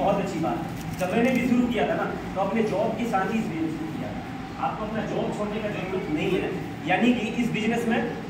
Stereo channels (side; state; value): both; identical; correlation 1.00